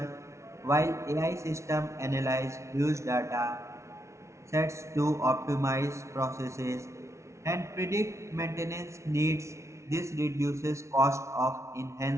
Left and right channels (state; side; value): late; left; 0.14 ms